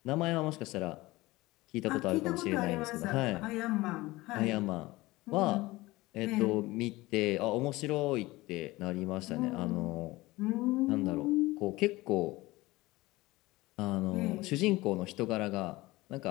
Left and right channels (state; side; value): quieter; right; 19.9 dB